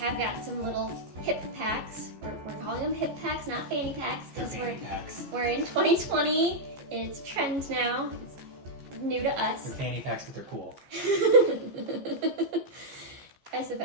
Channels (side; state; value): left; late; 14 ms